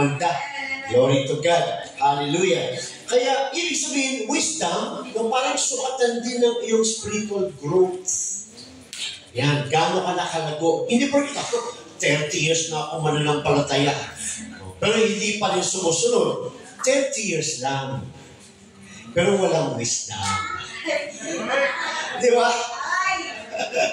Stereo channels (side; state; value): both; identical; correlation 1.00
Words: Glory to God. Hallelujah. Kaya, ibig sabihin, wisdom, yung parang sukatan din ng iyong spiritual growth. Yan, gaano ka nakalago. Hindi po ako, 30 years na ako mananampalataya. Pero hindi pa rin sumusunod. 30 years lang. Pero walang wisdom. Di ba?